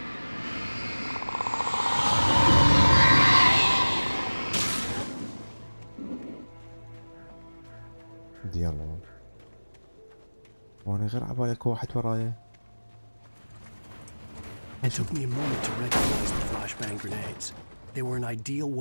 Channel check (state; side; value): inverted; both; correlation -1.00